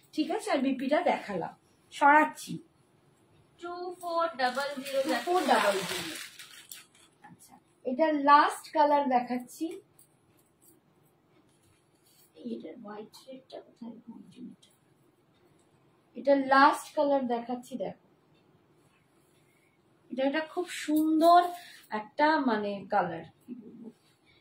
ঠিক আছে। আর বিপিটা দেখালাম, সরাচ্ছি 2400। আচ্ছা, এটা লাস্ট কালার দেখাচ্ছি। এটা হোয়াইট রেডটা কোথায়? এটা লাস্ট কালার দেখাচ্ছি, দেখো এটা খুব সুন্দর একটা মানে কালার।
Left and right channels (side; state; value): both; identical; correlation 1.00